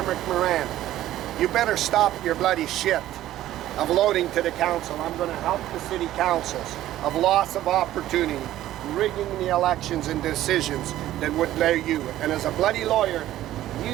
Moran, you better stop your bloody shit of loading to the council. I'm going to help the city councils of loss of opportunity, rigging the elections and decisions that would allow you. And as a bloody lawyer,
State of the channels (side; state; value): left; quieter; 13.8 dB